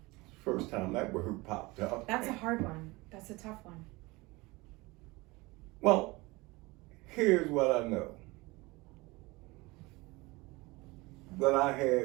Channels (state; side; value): quieter; left; 23.1 dB